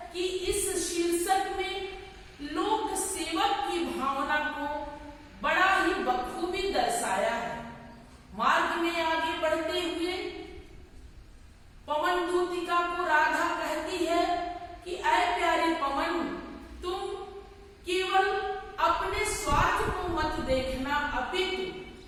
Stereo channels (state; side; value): identical; both; correlation 1.00